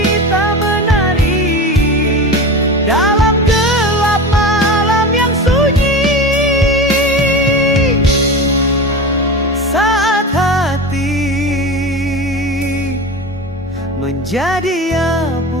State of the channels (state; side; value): normal; both; correlation 0.28